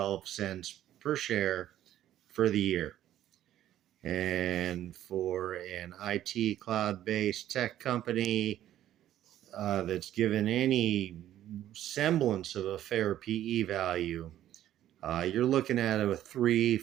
cents per share for the year. And for an IT cloud-based tech company that's given any semblance of a fair PE value, you're looking at a $3,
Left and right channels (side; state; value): left; quieter; 12.3 dB